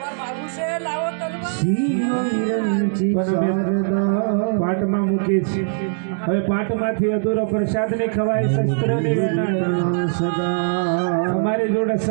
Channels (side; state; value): left; silent; digital silence